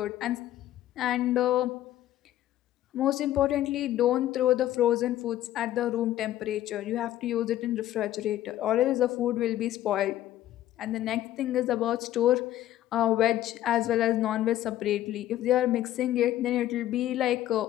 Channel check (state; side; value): quieter; right; 13.4 dB